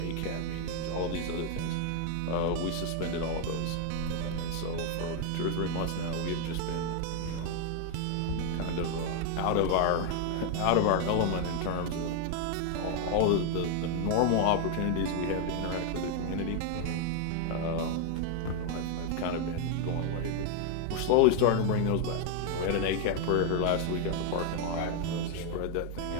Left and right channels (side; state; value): both; different; correlation 0.00